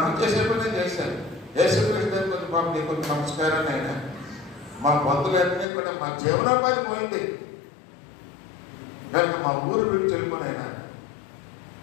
చేసే పని చేశారు. యేసుక్రీస్తు కొంచెం పాపం నీకు కొంచెం నమస్కారం అయినా మా బంధువులన్నీ కూడా మా జీవనోపాధి పోయింది కనుక మా ఊరు వీడు చెప్పుకునైనా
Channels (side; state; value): right; drops out; at 5.7 s